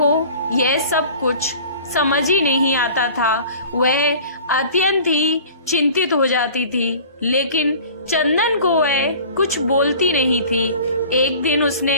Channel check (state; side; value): inverted; both; correlation -0.44